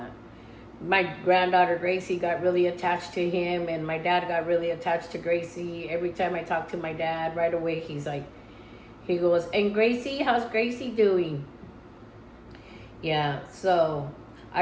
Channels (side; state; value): both; identical; correlation 1.00